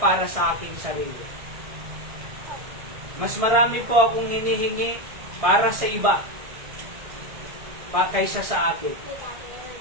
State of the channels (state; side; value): late; left; 1.6 ms